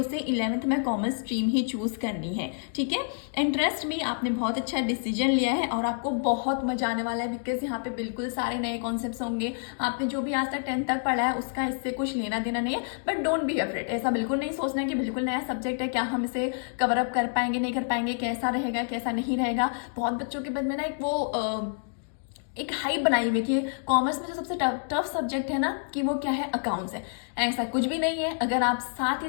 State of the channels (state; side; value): silent; right; digital silence